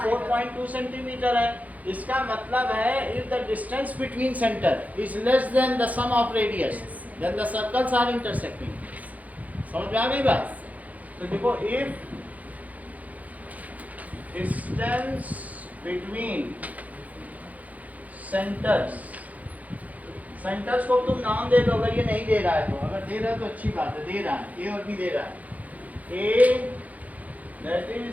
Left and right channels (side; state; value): left; late; 0.075 ms